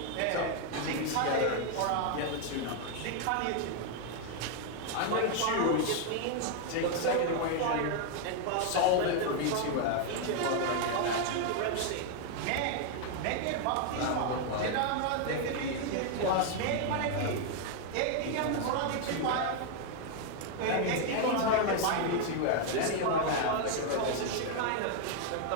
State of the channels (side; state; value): both; different; correlation 0.00